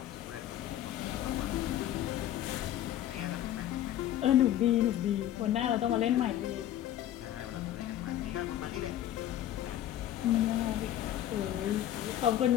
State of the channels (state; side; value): quieter; right; 12.2 dB